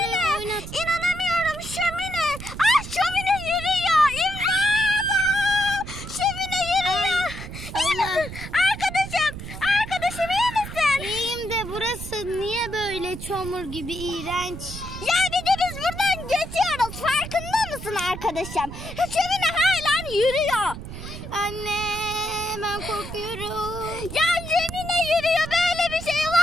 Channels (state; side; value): noise; right; rumble, 10 dB below the sound